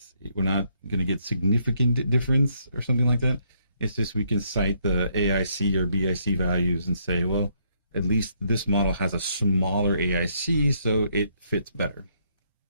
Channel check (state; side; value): inverted; both; correlation -0.72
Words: not going to get significant difference or something like that. It's just we can cite the AIC or BIC values and say, well, at least this model has a smaller AIC, so it fits better.